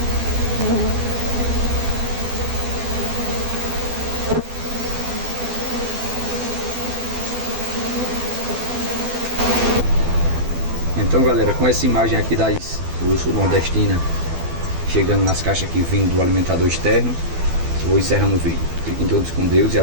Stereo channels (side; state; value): left; late; 12 ms